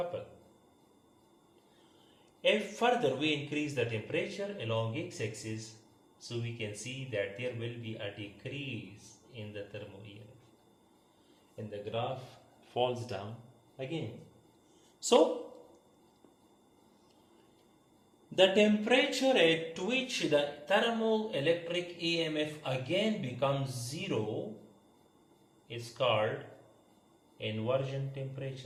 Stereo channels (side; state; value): both; identical; correlation 1.00